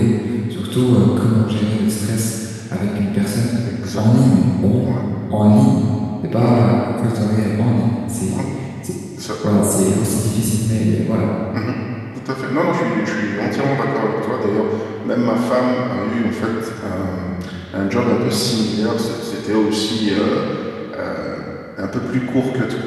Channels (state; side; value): identical; both; correlation 1.00